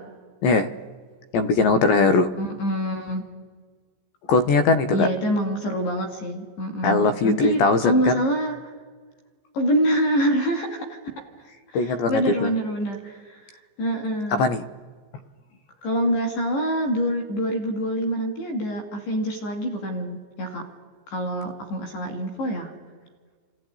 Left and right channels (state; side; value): late; right; 14 ms